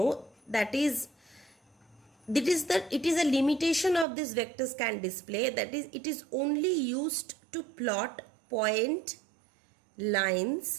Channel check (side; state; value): left; drops out; at 4.0 s